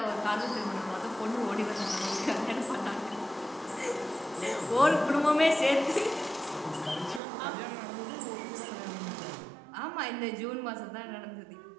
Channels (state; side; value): drops out; left; at 7.2 s